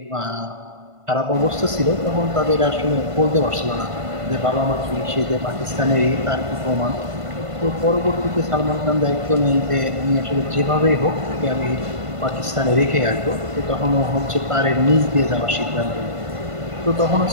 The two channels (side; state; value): left; late; 1.5 ms